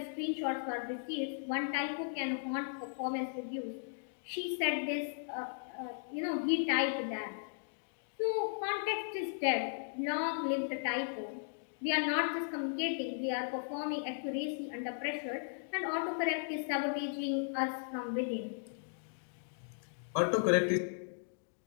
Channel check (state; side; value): silent; right; digital silence